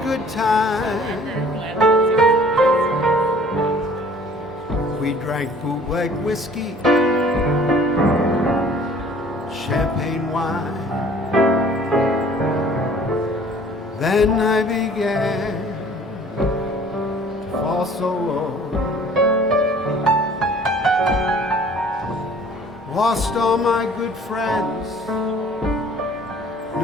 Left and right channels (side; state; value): both; normal; correlation 0.52